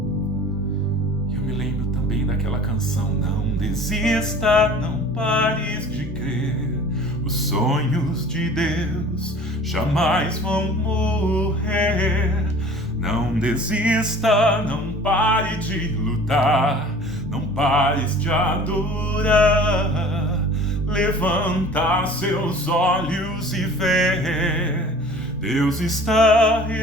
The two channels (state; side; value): normal; both; correlation 0.45